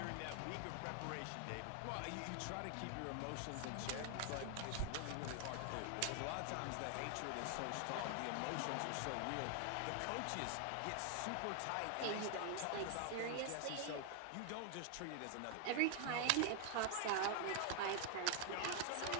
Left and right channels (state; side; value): different; both; correlation 0.00